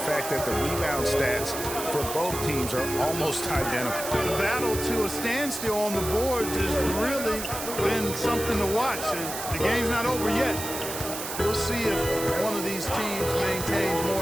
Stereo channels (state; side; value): noise; right; hiss, 7 dB below the sound